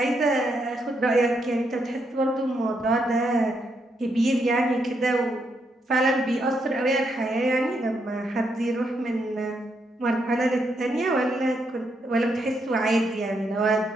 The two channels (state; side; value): normal; both; correlation 0.78